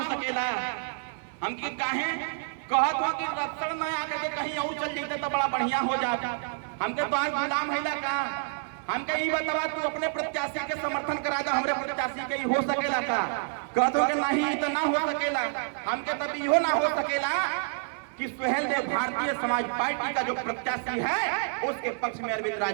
सकेला। हम की काहे कहत हो कि रत्सर न आकर के कहीं और चल जाते तो बड़ा बढ़िया हो जाता। हमके तो आज गुलाम हैला का। हमके ये बतावा तू अपने प्रत्याशी के समर्थन करा जा, हमरे प्रत्याशी के हो सकेला का। कहत हो कि नहीं तो ना हो सकेला। हमके तब इहो ना हो सकेला कि सुहेल देव भारतीय समाज पार्टी का जो प्रत्याशी है उसके पक्ष में अरविंद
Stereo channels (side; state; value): left; silent; digital silence